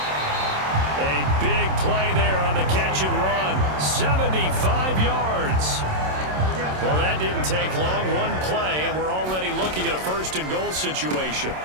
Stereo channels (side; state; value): left; late; 27 ms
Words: A big play there on the catch and run. 75 yards. Well, that didn't take long. One play, and we're already looking at a first and goal situation.